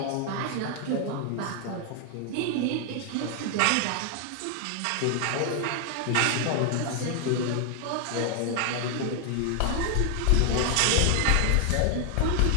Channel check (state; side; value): different; both; correlation 0.00